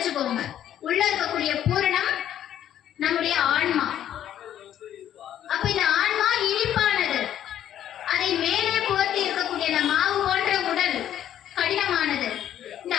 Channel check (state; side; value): quieter; right; 10.9 dB